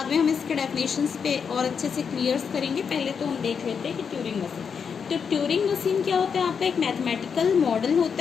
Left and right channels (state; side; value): quieter; right; 6.5 dB